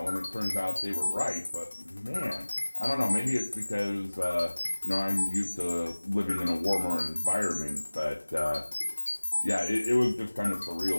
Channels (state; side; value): inverted; both; correlation -1.00